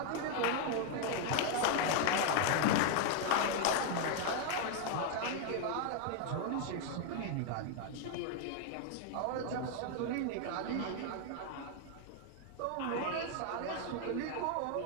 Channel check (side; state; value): both; different; correlation 0.00